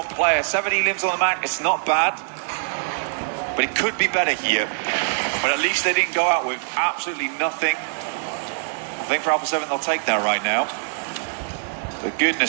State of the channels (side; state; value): left; silent; digital silence